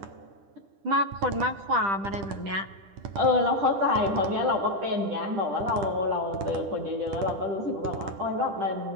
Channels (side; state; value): left; late; 10 ms